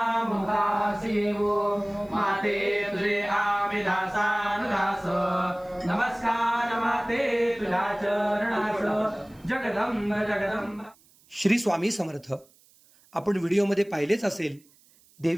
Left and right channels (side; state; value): right; noise; hiss, 30 dB below the sound